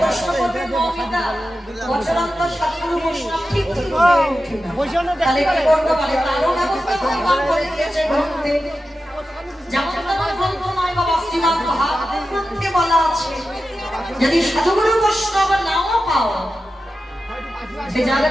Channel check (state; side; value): normal; both; correlation 0.92